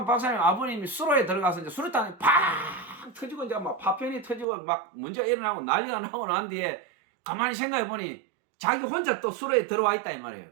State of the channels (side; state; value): left; drops out; at 4.5 s